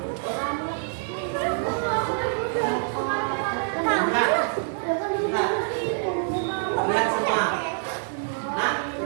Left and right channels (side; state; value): left; silent; 61 dB below the other